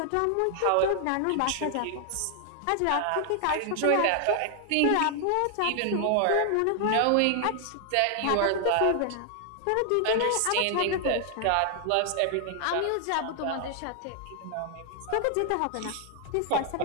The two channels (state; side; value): different; both; correlation 0.00